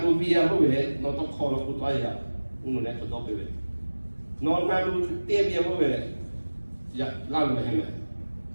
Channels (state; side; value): inverted; both; correlation -1.00